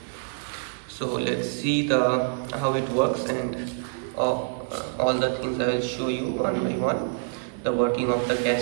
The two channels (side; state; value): left; silent; digital silence